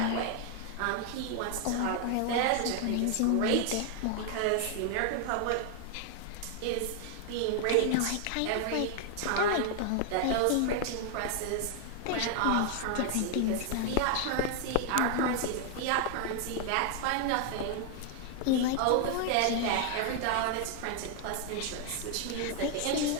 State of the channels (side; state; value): both; different; correlation 0.00